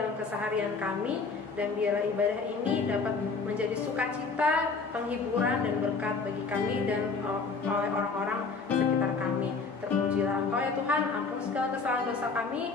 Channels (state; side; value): quieter; right; 4.5 dB